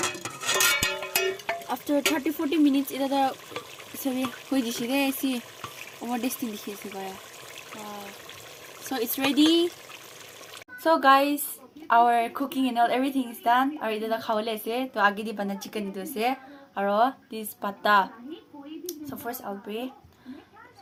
After 30-40 minutes, it is sorry, who is it? See, over this thing is so it's ready. So guys, our cooking and all everything is done. Our ida khawle se to agi di bana chicken do se. Aro this pata. So first I'll pray.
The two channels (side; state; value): both; identical; correlation 1.00